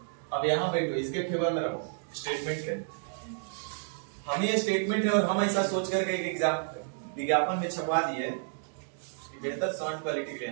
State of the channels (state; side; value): silent; left; digital silence